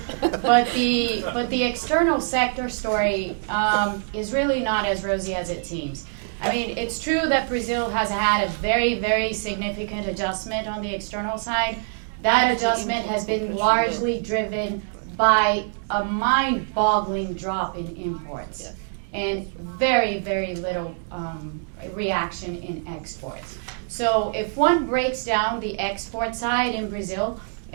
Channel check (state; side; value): silent; left; 62 dB below the other